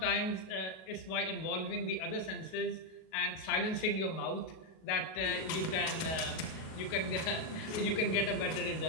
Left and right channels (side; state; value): right; late; 37 ms